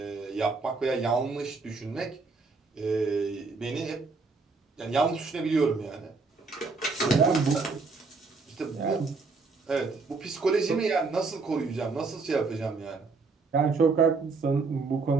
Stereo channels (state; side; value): quieter; left; 4.2 dB